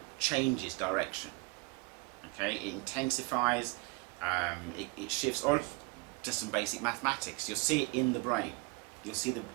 changes direction. Okay, it intensifies, it shifts, or just some basic mathematics. You'll see it in the brain. We've seen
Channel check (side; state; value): left; quieter; 27.7 dB